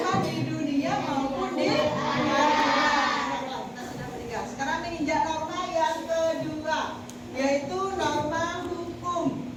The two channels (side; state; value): both; identical; correlation 1.00